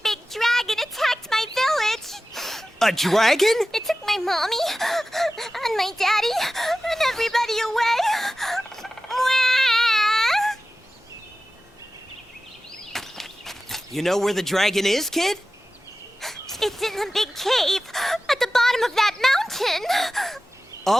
big dragon attacked my village! A dragon? It took my mommy and my daddy and everybody away. You know where the dragon is, kid? It's in the big cave at the bottom of that mountain.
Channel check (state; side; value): normal; both; correlation 0.95